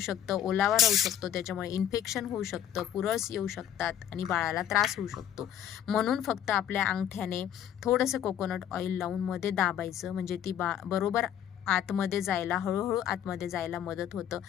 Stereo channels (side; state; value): right; quieter; 10.1 dB